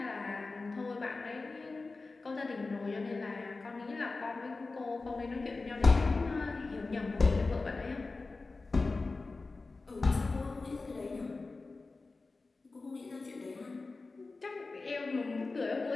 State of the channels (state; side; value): quieter; right; 3.7 dB